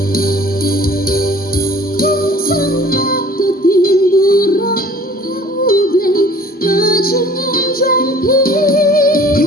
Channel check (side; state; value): both; normal; correlation 0.49